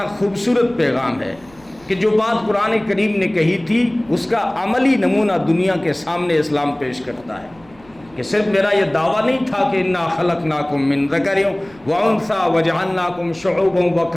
خوبصورت پیغام ہے کہ جو بات قرآن کریم نے کہی تھی اس کا عملی نمونہ دنیا کے سامنے اسلام پیش کرتا ہے۔ کہ صرف میرا یہ دعویٰ نہیں تھا کہ انا خلقناکم من ذکر و انثی وجعلناکم شعوبا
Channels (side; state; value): right; noise; rumble, 27 dB below the sound